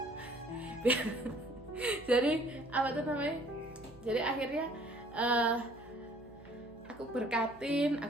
Jadi apa tuh namanya, jadi akhirnya aku berkatin,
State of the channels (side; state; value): right; noise; hum, 22 dB below the sound